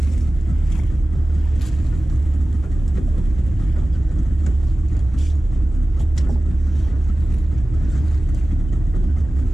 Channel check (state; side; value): normal; both; correlation 0.96